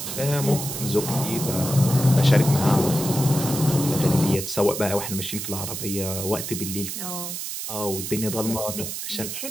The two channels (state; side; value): noise; right; hiss, 6 dB below the sound